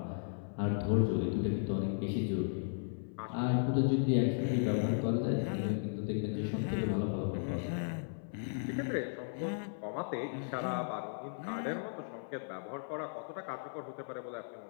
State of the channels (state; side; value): silent; right; 54 dB below the other